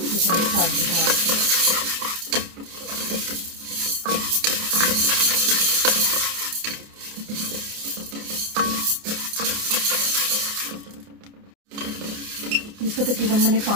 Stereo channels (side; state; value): left; late; 29 ms